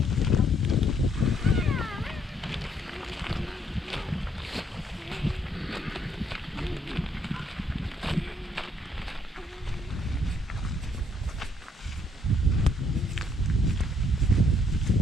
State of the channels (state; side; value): normal; both; correlation 0.68